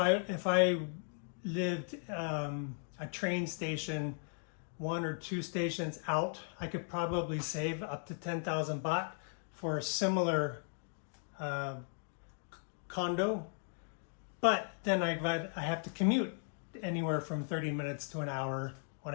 lived a train station 1 or 2 stations out. I could probably save up to 10,000 baht for a similar condo, but then I have to commute anywhere from 30 minutes to an hour on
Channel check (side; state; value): right; silent; 53 dB below the other